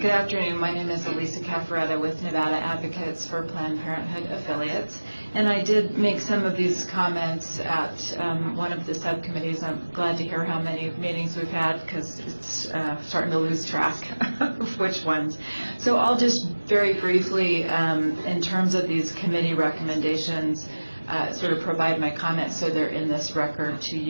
afternoon. My name is Elisa Caffaretta with Nevada Advocates for Planned Parenthood Affiliates. And I did make some of these comments at one of the subcommittees. I'm glad to hear how many meetings we've had because it's starting to lose track of which ones. So I'll just very briefly, in terms of these committee recommendations, sort of provide my comments so they're in this record to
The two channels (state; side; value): inverted; both; correlation -1.00